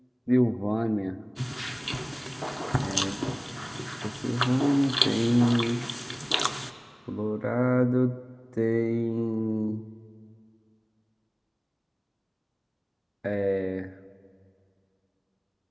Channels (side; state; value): both; identical; correlation 1.00